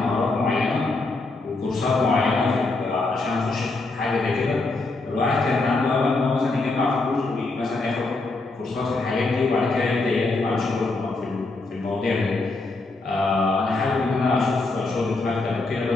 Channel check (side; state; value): right; quieter; 3.4 dB